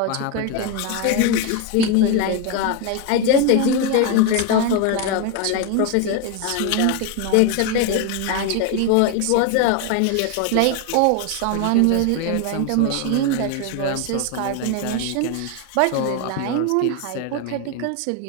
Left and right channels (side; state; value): both; different; correlation 0.02